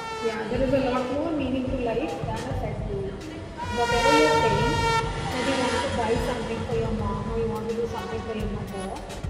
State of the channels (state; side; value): identical; both; correlation 1.00